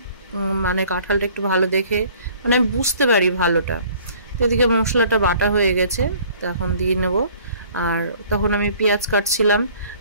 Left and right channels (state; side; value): inverted; both; correlation -0.54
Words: মানে কাঁঠালটা একটু ভালো দেখে, মানে আমি বুঝতে পারি ভালোটা। তো এদিকে মশলাটা বাটা হয়ে গেছে, তো এখন দিয়ে নেব। আর তখন আমি পেঁয়াজ কাটছিলাম